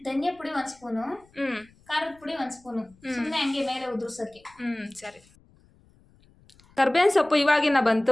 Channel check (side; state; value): left; noise; rumble, 30 dB below the sound